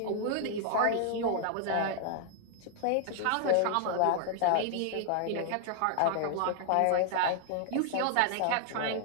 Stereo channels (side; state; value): both; different; correlation 0.00